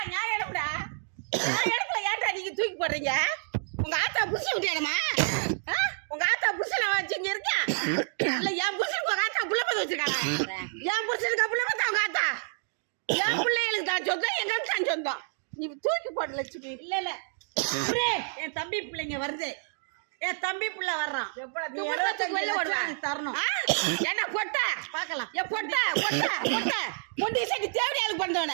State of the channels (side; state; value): left; silent; digital silence